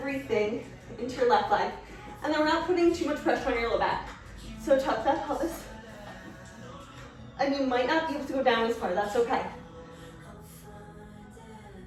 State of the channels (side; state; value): both; identical; correlation 1.00